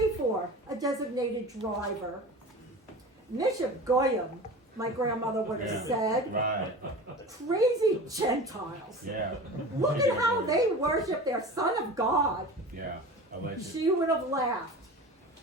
for a designated driver. Misha Goyim, my grandmother would have said. Right. Crazy Gentiles. Yeah. Look at how they worship their Son of God. Yeah. Alleged. She would have laughed.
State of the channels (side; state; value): both; normal; correlation 0.35